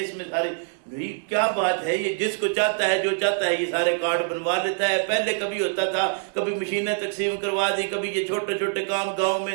اس میں سارے نہیں، کیا بات ہے، یہ جس کو چاہتا ہے جو چاہتا ہے یہ سارے کارڈ بنوا لیتا ہے۔ پہلے کبھی ہوتا تھا، کبھی مشینیں تقسیم کروا دی، کبھی یہ چھوٹے چھوٹے کام گاؤں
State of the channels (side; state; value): left; silent; digital silence